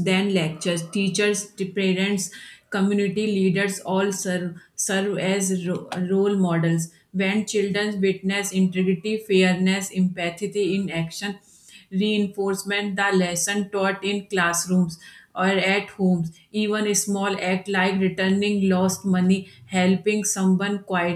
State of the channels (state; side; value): identical; both; correlation 1.00